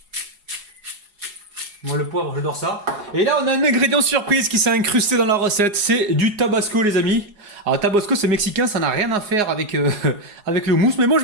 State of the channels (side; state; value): left; late; 4.8 ms